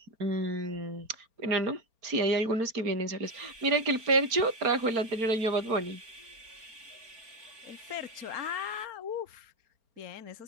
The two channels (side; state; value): left; late; 4.3 ms